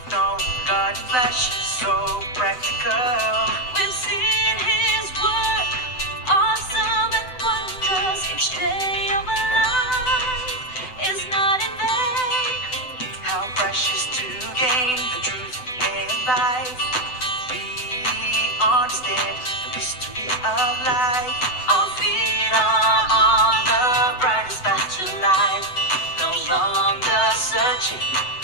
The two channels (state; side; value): late; right; 7.9 ms